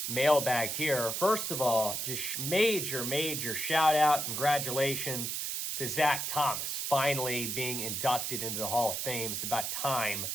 mailbag here. First of all, just major shout out, congratulations to Zach Thomas finally being inducted into the Hall of Fame. It's about time.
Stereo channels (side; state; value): right; noise; hiss, 2 dB below the sound